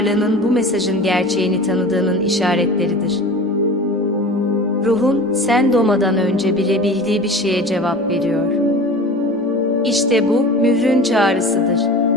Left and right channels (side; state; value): both; normal; correlation 0.37